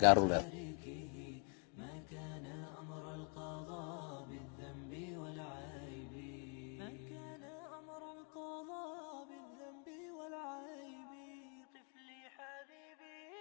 gaar u leedahay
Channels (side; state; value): right; quieter; 36.1 dB